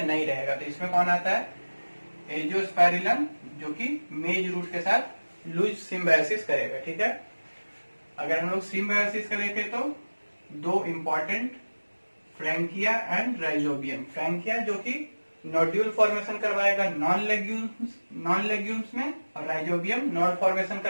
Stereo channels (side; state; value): both; inverted; correlation -1.00